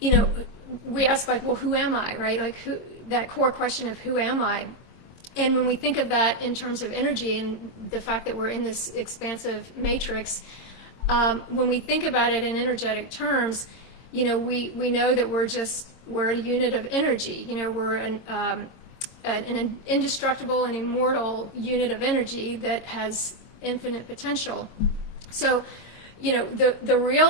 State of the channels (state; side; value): late; right; 24 ms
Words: know, we ask, like, well, who am I, right? Like, that core question of who am I? And when we think of that in terms of energy and the fact that we're in this expansive matrix, when we think about it in energetic terms, you know, we know that we're a unit of energy. You know, we're an indestructible and immortal unit of energy that has infinite potential. So you know, the